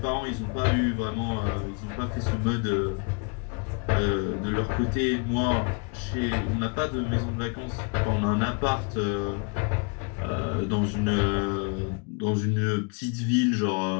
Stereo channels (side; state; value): right; quieter; 34.6 dB